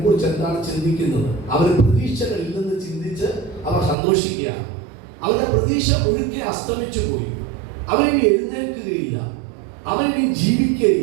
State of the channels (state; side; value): drops out; left; at 4.0 s